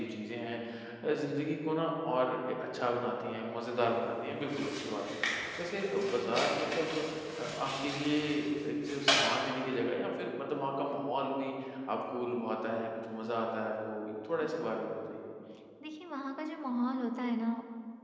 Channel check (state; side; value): identical; both; correlation 1.00